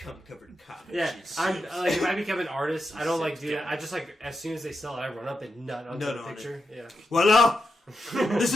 covered comic. Yeah, I'm like if I become an artist, I don't like do that. I just like as soon as they sell it, I run up and nut onto Nut the on picture. Yeah. Voila! This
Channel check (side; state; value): both; normal; correlation 0.86